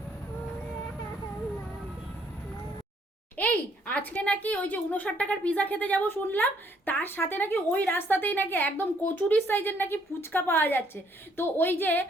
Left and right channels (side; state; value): both; normal; correlation 0.67